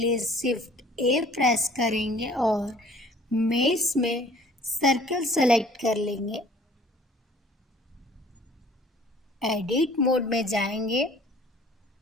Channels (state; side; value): normal; both; correlation 0.53